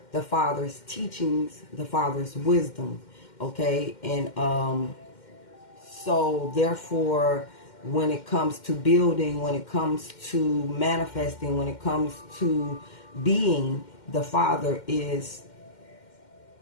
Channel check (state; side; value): late; right; 2.1 ms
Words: teachings, the Father's wisdom. Okay, and so therefore, when it comes to building, when it comes to manifesting, when it comes to being, the Father is